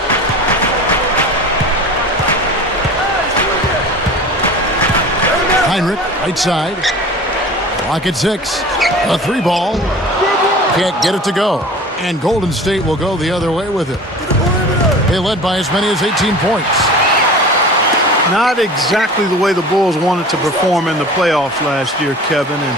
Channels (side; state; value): both; normal; correlation 0.39